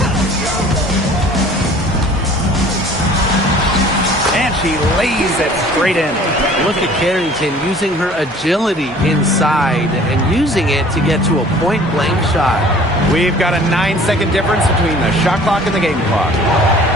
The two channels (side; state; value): both; normal; correlation 0.50